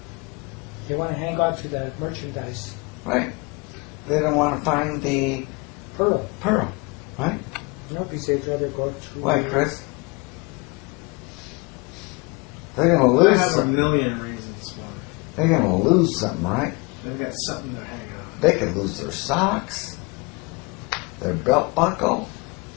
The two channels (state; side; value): quieter; right; 28.1 dB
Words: They want to hang on to the merchandise. Right. They don't want to find the Pearl. right? No, because they'd rather go through. Why, Chris? They're gonna I lose. have a Some, million reasons why. they're gonna lose something, right? They've got something they're hanging on. They could lose their socks, their belt buckle.